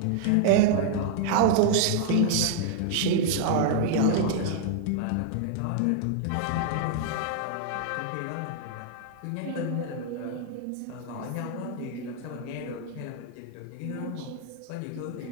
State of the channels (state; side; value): different; both; correlation 0.00